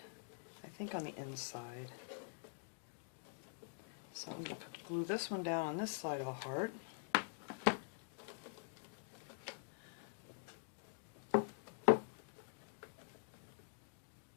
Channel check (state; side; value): silent; right; digital silence